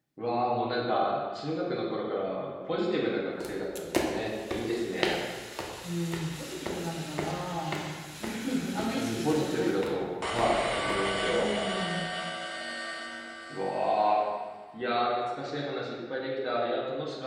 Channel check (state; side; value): identical; both; correlation 1.00